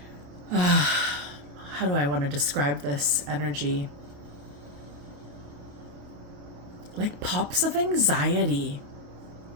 how do I want to describe this energy? Like pops of anxiety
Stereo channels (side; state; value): left; late; 28 ms